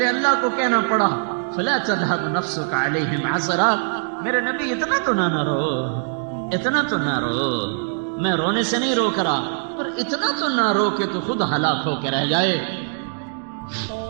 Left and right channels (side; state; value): left; silent; digital silence